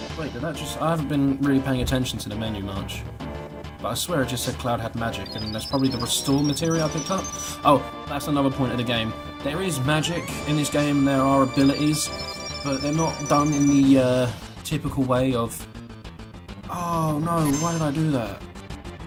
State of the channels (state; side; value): identical; both; correlation 1.00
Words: Wait, did that just... I haven't been really paying attention to the menu much. But I swear it just said Cloud had magic, and that's probably the restore material I picked up. Oh, that's another point of the game. There is magic in this game, there are abilities, but they're not done in the typical way of... Oh no, why did I do that?